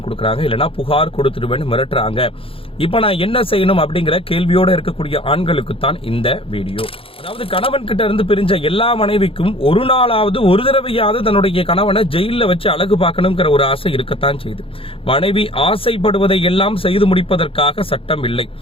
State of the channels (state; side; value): late; right; 0.27 ms